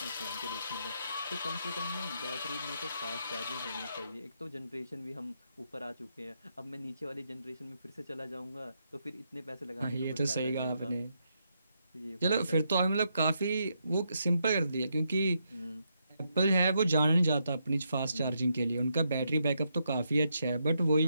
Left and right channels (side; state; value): both; inverted; correlation -0.80